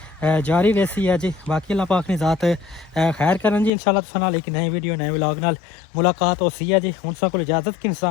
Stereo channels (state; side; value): drops out; right; at 3.7 s